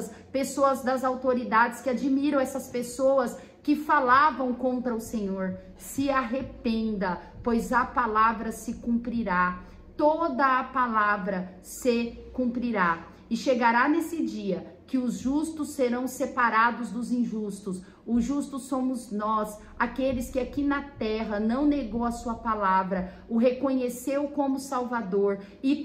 pessoas das autoridades que admiram essas pessoas que falavam contra o Senhor. Se arrependa, pois a palavra se cumprirá. Toda a palavra se cumprirá. E chegará nesse dia que os justos serão separados dos injustos. Os justos somos nós, aqueles que aqui na terra não negou a sua palavra, o reconheceu como Salvador e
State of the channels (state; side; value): identical; both; correlation 1.00